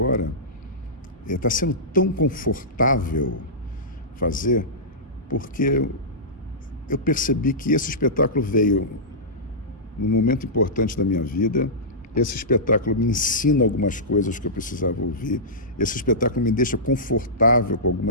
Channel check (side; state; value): both; normal; correlation -0.16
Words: está sendo tão confortável fazer, porque eu percebi que esse espetáculo veio num momento importante da minha vida. Esse espetáculo me ensina algumas coisas que eu precisava ouvir. Esse espetáculo me deixa confortável com